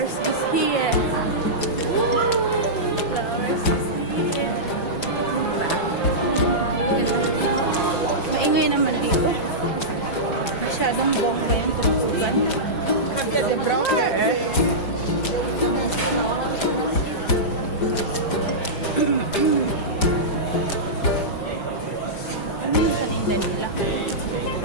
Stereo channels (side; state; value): right; late; 5.0 ms